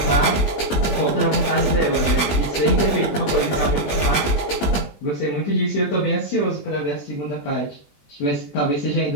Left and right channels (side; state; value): right; late; 20 ms